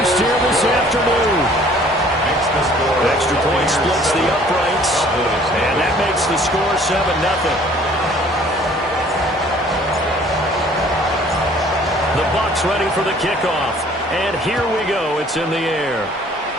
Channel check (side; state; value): both; normal; correlation 0.55